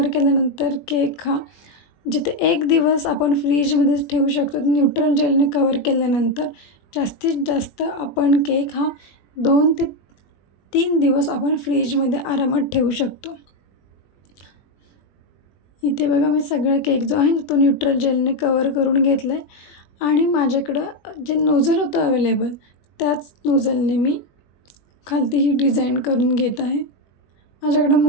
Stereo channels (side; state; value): right; late; 21 ms